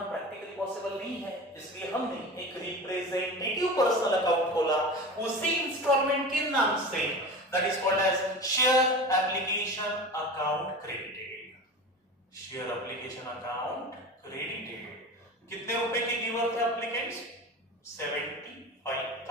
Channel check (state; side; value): normal; both; correlation 0.31